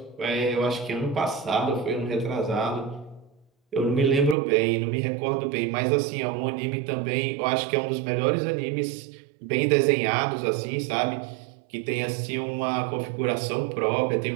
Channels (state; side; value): drops out; left; at 4.4 s